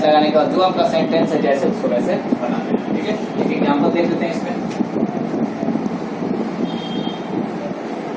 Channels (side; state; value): both; identical; correlation 1.00